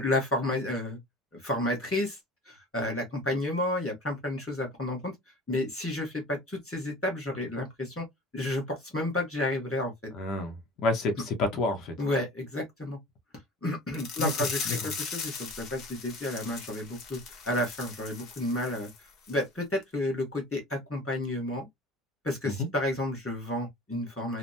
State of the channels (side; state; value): both; normal; correlation 0.41